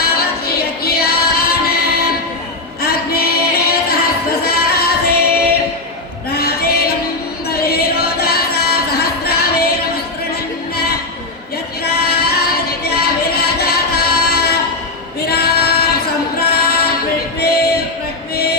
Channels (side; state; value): right; quieter; 3.0 dB